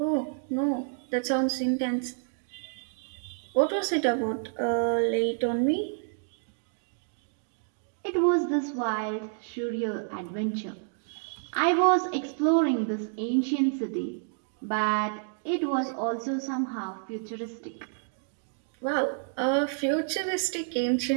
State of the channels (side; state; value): left; silent; digital silence